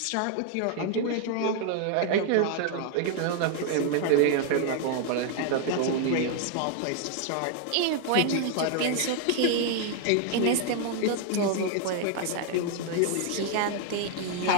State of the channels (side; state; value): both; different; correlation 0.00